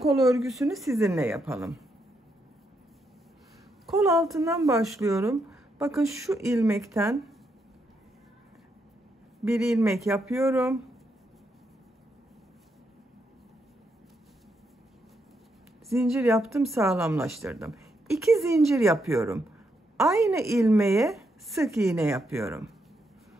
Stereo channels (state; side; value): normal; both; correlation 0.79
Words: örgüsünü sizinle yapalım. Kol altından başlıyorum. Bakın şu ilmekten Bir ilmek yapıyorum. Zincir yaptım, sağlamlaştırdım. 2 zincir yapıyorum. Aynı ilmeğe sık iğne yapıyorum.